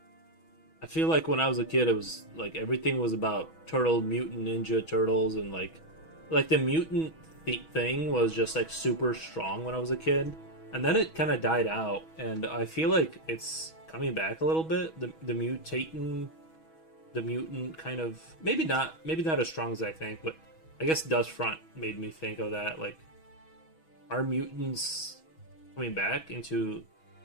I feel like when I was a kid, it was like everything was about turtle, mutant, ninja turtles, and like the mutant thing was just like super strong when I was a kid, and then it kind of died out, and I feel like it's coming back a little bit. The mutant kind of maybe not as strong as I think, but I guess Dust Front made me think of that. Like, are mutants coming back into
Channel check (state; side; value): late; right; 6.2 ms